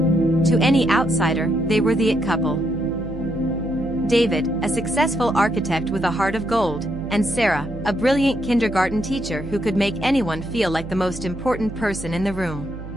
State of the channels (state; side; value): noise; right; hum, 11 dB below the sound